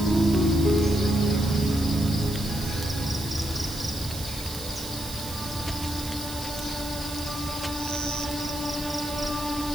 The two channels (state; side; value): noise; right; hiss, 11 dB below the sound